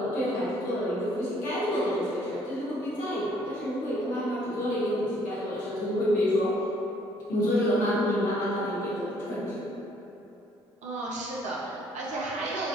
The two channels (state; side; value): normal; both; correlation 0.63